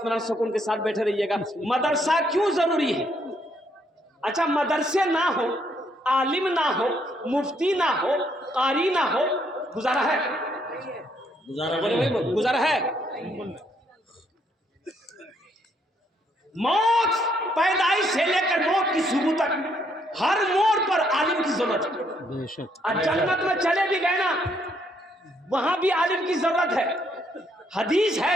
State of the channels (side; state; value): both; normal; correlation 0.71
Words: सुकून के साथ बैठे रहिएगा। मदरसा क्यों जरूरी है? अच्छा, मदरसे ना हो, आलिम ना हो, मुफ्ती ना हो, कारी ना हो, गुजारा है? बोले भाई, गुजारा है? मौत पैदाइश से लेकर मौत की सुबह तक हर मोड़ पर आलिम की जरूरत है। बेशक। और जन्नत में चले भी गए ना, वहां भी आलिम की जरूरत है। हदीस